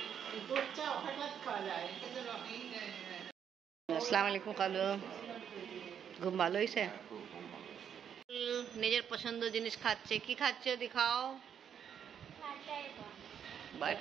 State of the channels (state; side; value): quieter; left; 8.4 dB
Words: দুধ চা হঠাৎ খাওয়া যায়। আসসালামু আলাইকুম কালু। ঘুম ভালো হয়েছে? নিজের পছন্দ জিনিস খাচ্ছে। কি খাচ্ছে দেখাও?